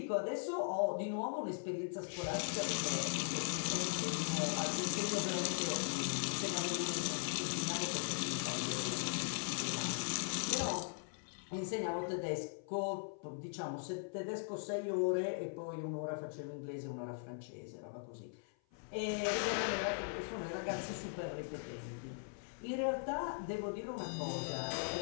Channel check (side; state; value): right; silent; 51 dB below the other